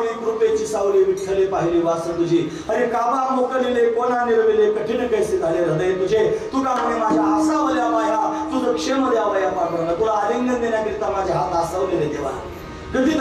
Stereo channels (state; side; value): identical; both; correlation 1.00